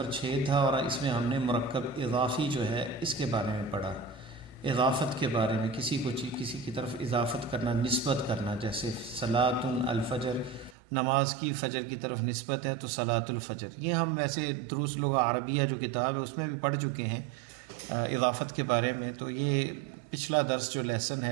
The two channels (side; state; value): left; drops out; at 10.8 s